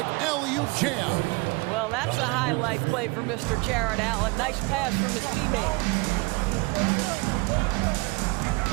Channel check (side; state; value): left; quieter; 26.3 dB